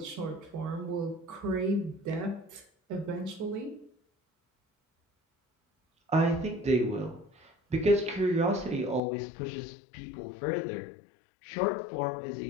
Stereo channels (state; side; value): drops out; right; at 9.0 s